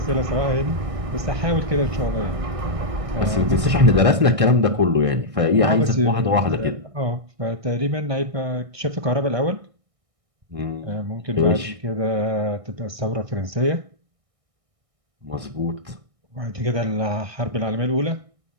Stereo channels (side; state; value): left; late; 1.6 ms